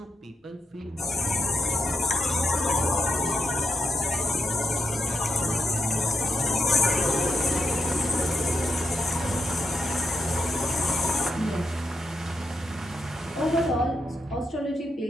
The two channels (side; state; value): both; normal; correlation 0.84